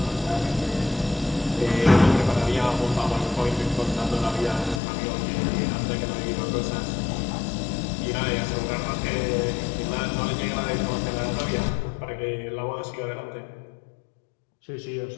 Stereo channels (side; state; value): right; drops out; at 4.8 s